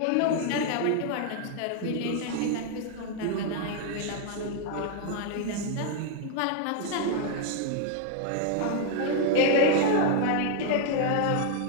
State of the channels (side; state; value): both; different; correlation 0.00